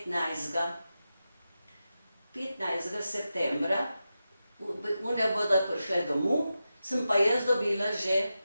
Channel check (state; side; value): inverted; both; correlation -0.91